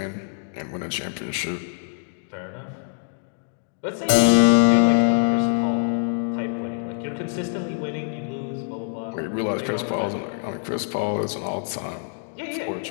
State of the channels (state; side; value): silent; right; digital silence